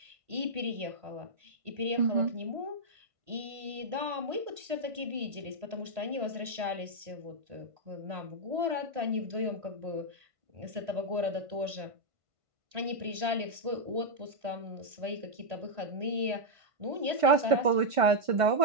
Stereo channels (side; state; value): left; late; 1.5 ms